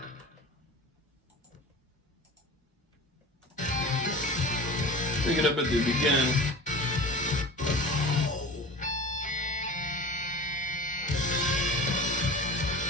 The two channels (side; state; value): both; normal; correlation 0.37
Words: Pick it up at the beginning.